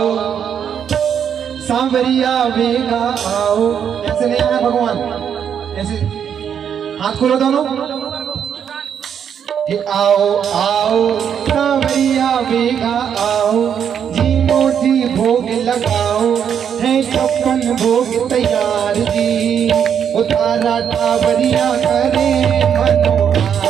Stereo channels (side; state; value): left; quieter; 8.2 dB